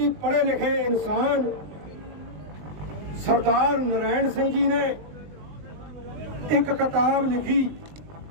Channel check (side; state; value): left; late; 20 ms